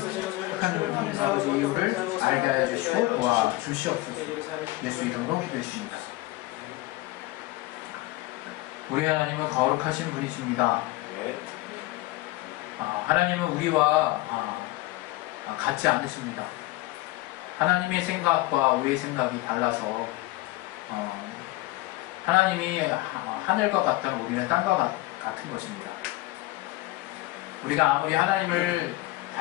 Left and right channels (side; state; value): right; quieter; 18.9 dB